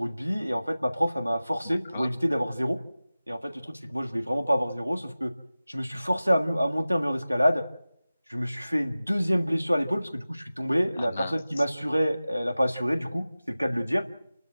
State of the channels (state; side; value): inverted; both; correlation -0.96